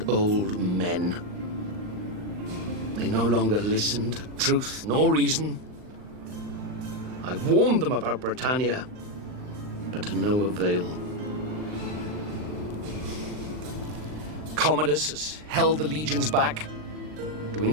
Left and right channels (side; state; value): left; late; 39 ms